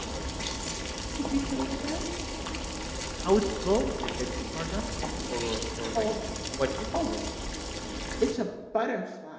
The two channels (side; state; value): both; identical; correlation 1.00